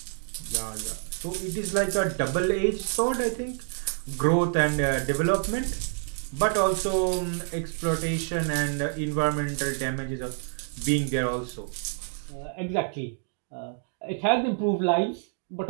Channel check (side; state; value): left; silent; digital silence